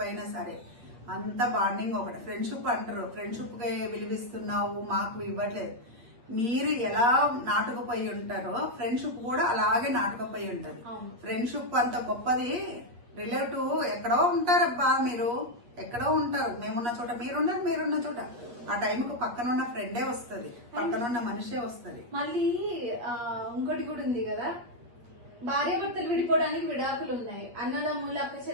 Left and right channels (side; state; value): left; late; 8.4 ms